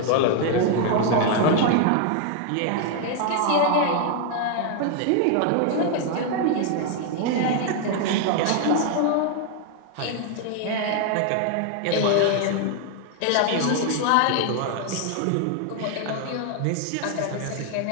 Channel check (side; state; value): both; different; correlation 0.00